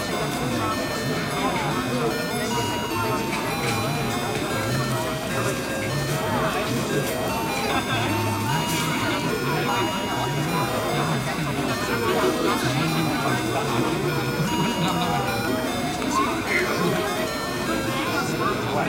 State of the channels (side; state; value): both; identical; correlation 1.00